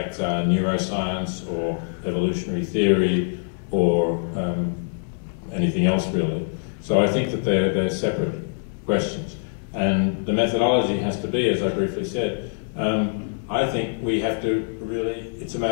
are neuroscience or evolutionary theory or anything else really. So I think that they're separate questions. And the methodology has to be, as I briefly said, I think we have to really, it's a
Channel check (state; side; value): silent; right; digital silence